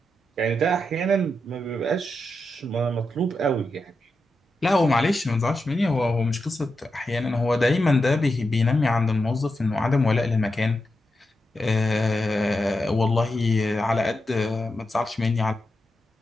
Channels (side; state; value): both; normal; correlation 0.87